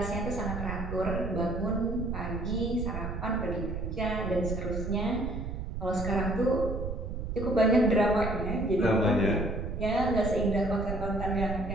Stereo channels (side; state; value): right; noise; rumble, 4 dB below the sound